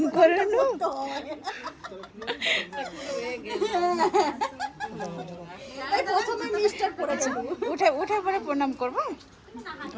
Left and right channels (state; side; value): identical; both; correlation 1.00